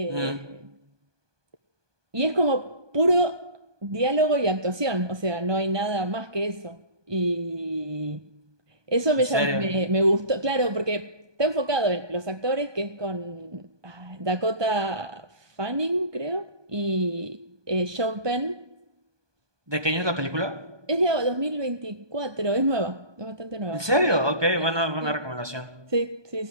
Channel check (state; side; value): late; left; 1.2 ms